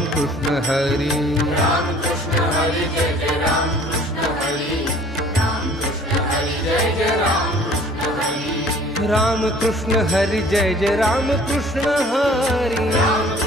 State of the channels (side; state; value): both; normal; correlation 0.52